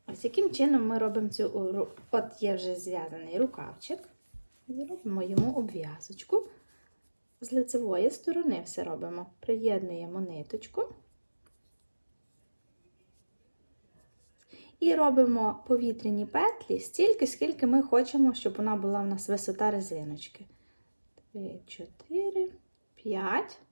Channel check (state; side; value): inverted; both; correlation -1.00